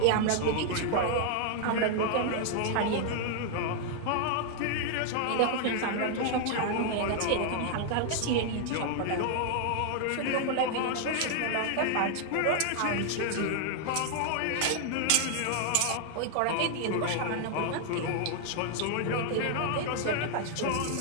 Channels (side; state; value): both; different; correlation 0.00